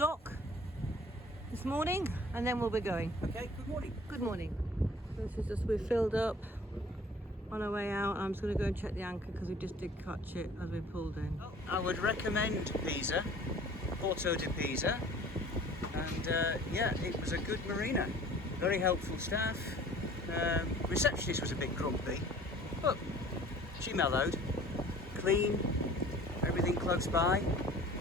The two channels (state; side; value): normal; both; correlation 0.49